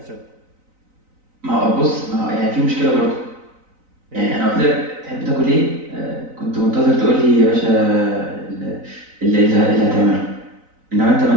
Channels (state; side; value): late; left; 3.9 ms